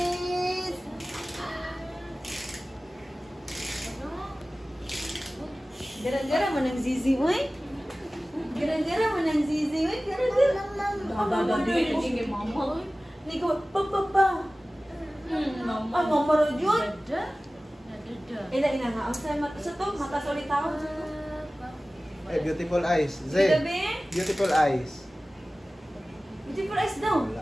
Gara-gara mo ng zizi, uy. Gara-gara mo ng zizi, uy. Gara-gara. Dadadili ko kay mama, uy. Hindi ko, pa. Mama. Ay, mama ro yun. Dada. Ina nga. Ang sa'yo sa to, matasolit ako. Eh, beautiful eyes. Sige, Zay, be. beautiful eyes. Beautiful eyes daw.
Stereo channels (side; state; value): both; normal; correlation 0.97